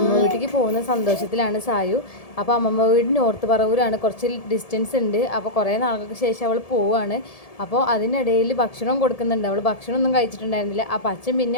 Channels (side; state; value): right; late; 1.7 ms